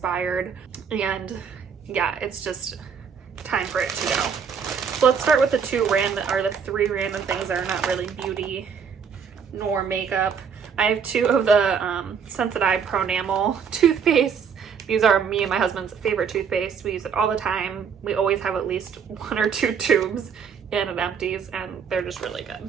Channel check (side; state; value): left; quieter; 6.7 dB